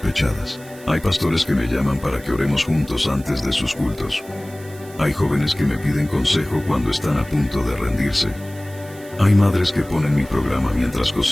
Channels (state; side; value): noise; right; hiss, 22 dB below the sound